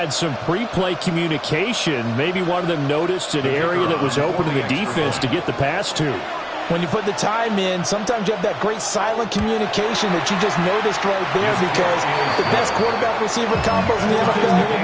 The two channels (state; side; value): identical; both; correlation 1.00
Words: some pre-play communication. Maybe one of them noticed an area that was open to the defense to get the pass to. When you put the time in, sometimes you have that great silent communication that you just noticed right there because the best quarterback-receiver combos in the NFL,